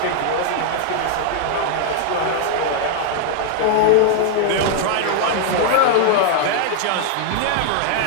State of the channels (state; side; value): different; both; correlation 0.00